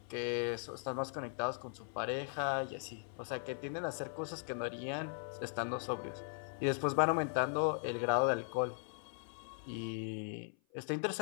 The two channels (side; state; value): right; silent; 52 dB below the other